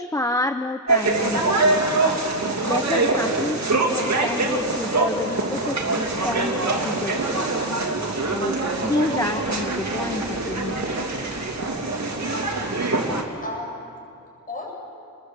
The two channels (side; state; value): both; normal; correlation 0.02